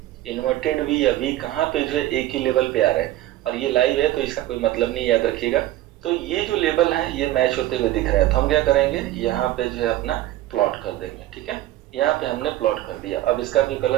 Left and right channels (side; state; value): left; quieter; 15.0 dB